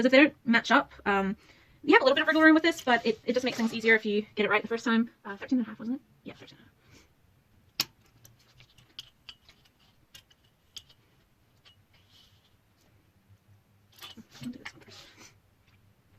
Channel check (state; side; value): identical; both; correlation 1.00